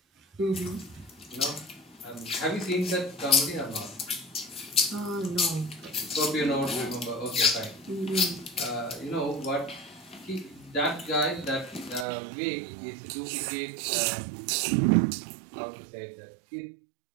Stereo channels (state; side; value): drops out; left; at 12.1 s